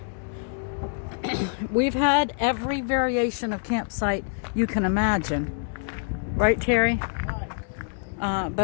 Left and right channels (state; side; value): silent; right; 61 dB below the other